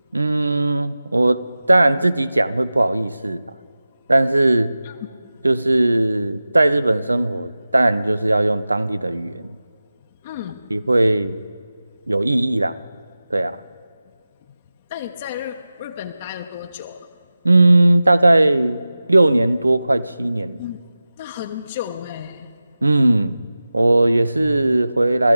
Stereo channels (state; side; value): inverted; both; correlation -0.96